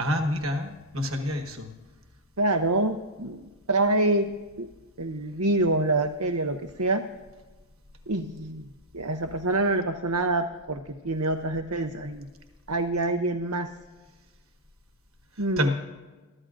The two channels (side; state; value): both; normal; correlation -0.09